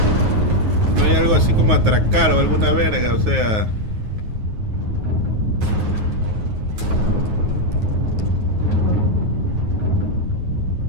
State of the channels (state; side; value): late; left; 9.5 ms